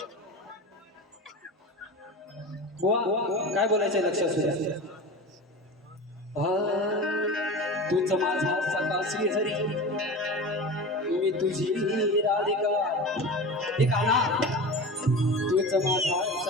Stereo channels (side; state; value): both; normal; correlation 0.30